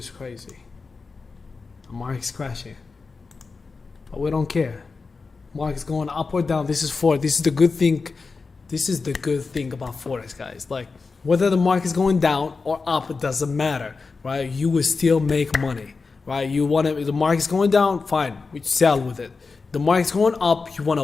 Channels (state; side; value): quieter; right; 4.4 dB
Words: crazy. The market's crashing, but we don't care. Market's going up or down. This is Forex. This is the good thing. This is the good thing about Forex, guys. Like whether the market's going down or up, it doesn't matter, right? You will still make money, right? You want to. The market's going down, fine. We sell with it. The market's going up, you want to